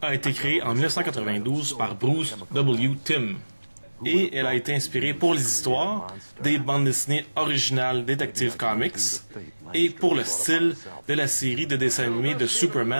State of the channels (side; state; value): both; inverted; correlation -1.00